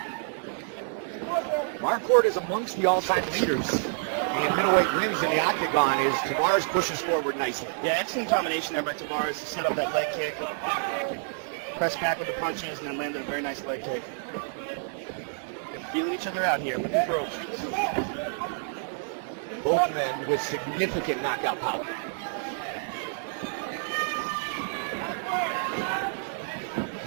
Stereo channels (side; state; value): left; silent; 59 dB below the other